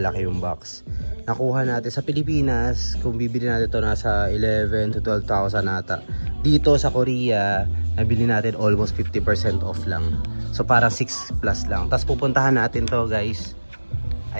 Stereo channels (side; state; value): both; inverted; correlation -1.00